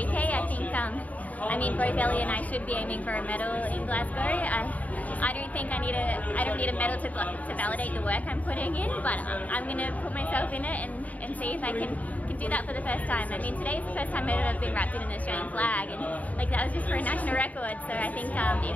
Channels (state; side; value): late; right; 0.073 ms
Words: I think, I mean, both Ellie and I should be aiming for a medal in Glasgow. I don't think I don't need a medal to validate the work I'm putting in, but I'm going to put myself in it and see if I can do that for the first time. I mean, today's the first time I've ever been wrapped in an Australian flag, and like that was just for a national record. So I think